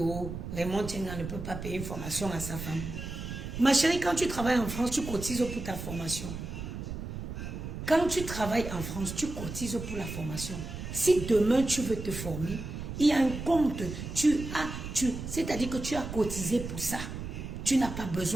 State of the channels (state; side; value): noise; right; rumble, 7 dB below the sound